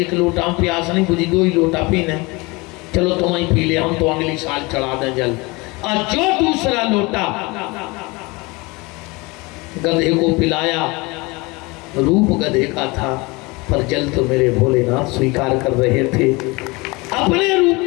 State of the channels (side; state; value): right; quieter; 25.0 dB